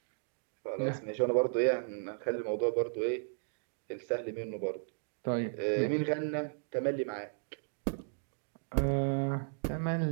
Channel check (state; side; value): silent; left; digital silence